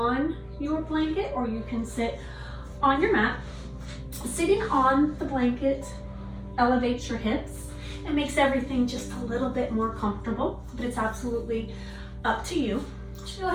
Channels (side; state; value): both; identical; correlation 1.00